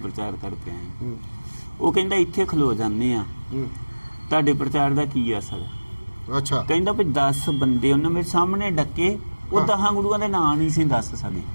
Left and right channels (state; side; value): inverted; both; correlation -1.00